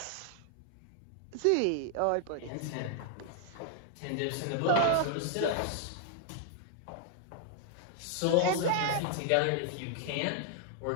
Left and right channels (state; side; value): different; both; correlation 0.00